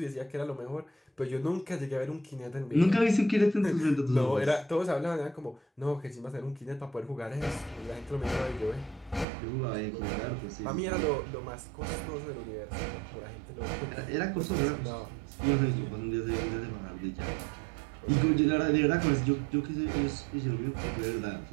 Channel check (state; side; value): drops out; left; at 9.2 s